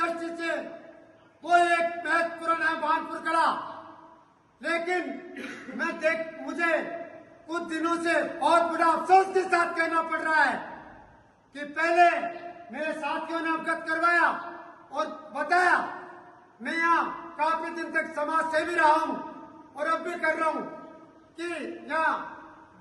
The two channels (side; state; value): both; identical; correlation 1.00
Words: से वो एक महत्वपूर्ण है भानपुर कला। लेकिन मुझे कुछ दिनों से और बड़ा अफसोस के साथ कहना पड़ रहा है कि पहले मेरे साथियों ने अवगत करवाया और बताया, मैं यहाँ काफी दिन तक समाज सेवी रहा हूँ और अब भी कर रहा हूँ कि यहाँ